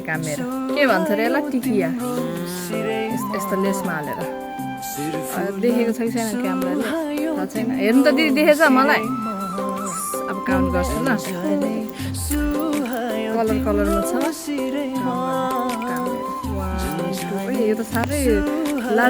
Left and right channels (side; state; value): both; identical; correlation 1.00